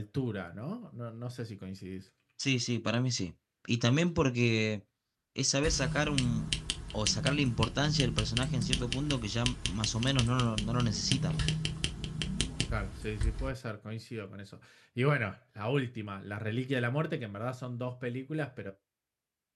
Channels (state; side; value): identical; both; correlation 1.00